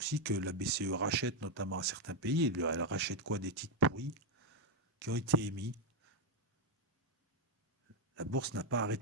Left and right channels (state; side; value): normal; both; correlation 0.04